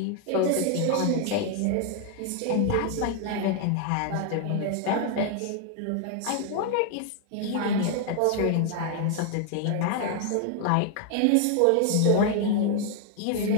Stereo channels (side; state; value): both; different; correlation 0.00